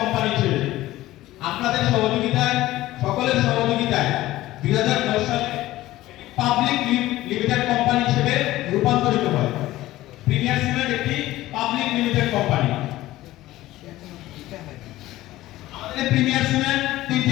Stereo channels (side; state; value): right; quieter; 16.2 dB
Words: হিসেবে। আপনাদের সহযোগিতায়, সকলের সহযোগিতায় 2010 সালে পাবলিক লিমিটেড কোম্পানি হিসেবে রূপান্তরিত হয়। প্রিমিয়ার সিমেন্ট একটি পাবলিক লিমিটেড কোম্পানি। আমাদের প্রিমিয়ার সিমেন্ট